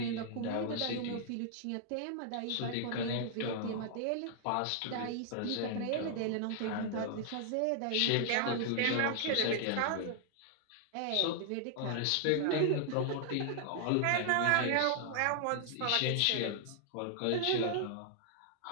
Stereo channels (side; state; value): both; different; correlation -0.01